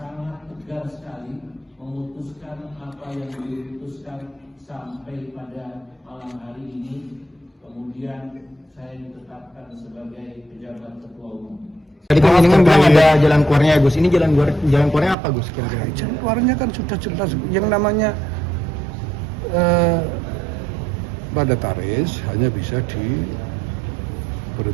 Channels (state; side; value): drops out; left; at 15.2 s